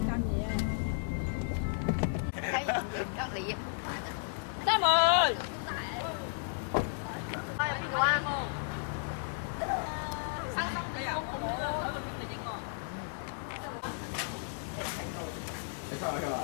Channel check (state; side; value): silent; right; digital silence